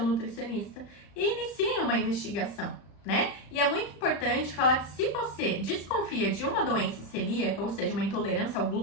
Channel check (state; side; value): late; right; 35 ms